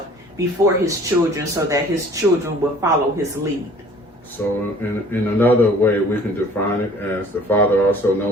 before his children so that his children will follow his lead. So in another way, we can define it as the father also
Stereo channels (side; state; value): both; normal; correlation 0.51